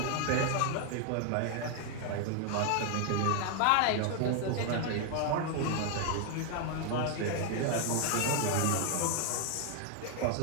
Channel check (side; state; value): both; different; correlation 0.00